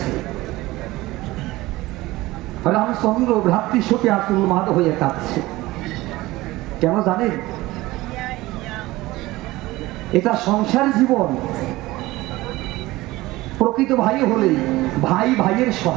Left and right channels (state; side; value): quieter; left; 18.9 dB